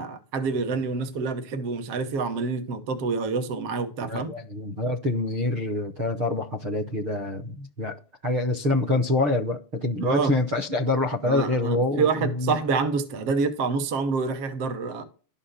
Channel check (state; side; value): late; left; 7.4 ms